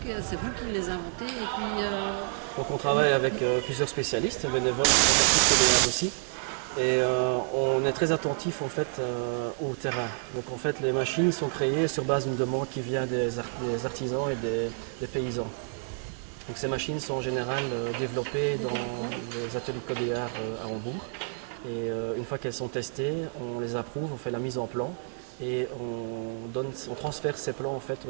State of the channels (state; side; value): silent; left; 58 dB below the other